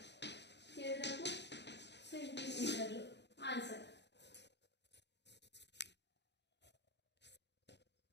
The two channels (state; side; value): late; right; 0.50 ms